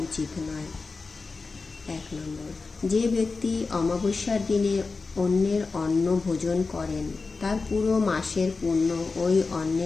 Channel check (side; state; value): right; quieter; 4.2 dB